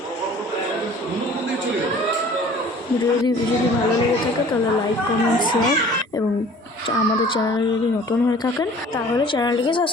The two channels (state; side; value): normal; both; correlation 0.49